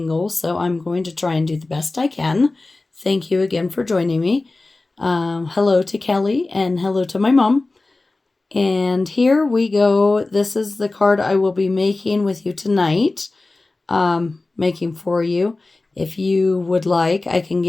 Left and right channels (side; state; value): right; quieter; 3.2 dB